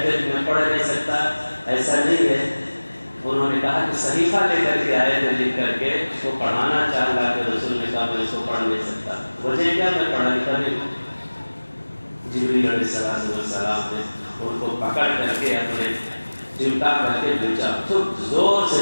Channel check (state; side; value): inverted; both; correlation -1.00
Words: تھے کہ میں پڑھ نہیں سکتا، ایسا نہیں ہے۔ انہوں نے کہا کہ صحیفہ لے کر کے آئے تھے، لکھ کر کے اس کو پڑھانا چاہ، اللہ کے رسول نے کہا میں اس کو پڑھ نہیں سکتا، وجہ کیا؟ میں پڑھا لکھا نہیں ہوں۔ جبریل علیہ السلام نے ان کو پکڑ کر کے اپنے چمٹا کر کے بیچا، خوب زور سے